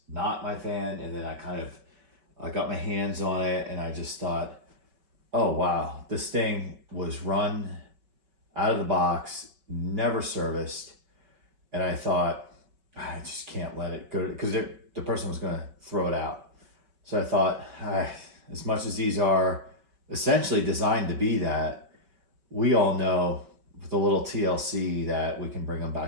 not my fan, and then I got my hands on it and I just thought, oh wow, this thing was run out of the box, never serviced. And I thought, I just can't let it go, because the person was gonna throw it out. So I thought, as much as these are essentially designed to be that, we all know with a little TLC that we can bring them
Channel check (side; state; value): left; late; 5.2 ms